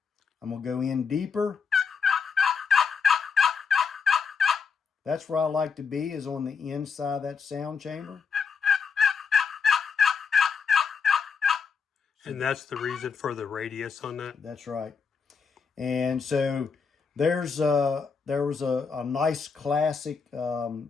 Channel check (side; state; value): right; quieter; 5.8 dB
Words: I'm going to go in deeper. That's where I like to be, is on the inside of that sound chamber. And that's the reason for the radius on that? That's right. And so there was a nice classic